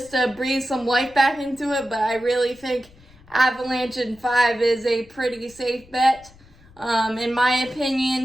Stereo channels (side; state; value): left; noise; rumble, 26 dB below the sound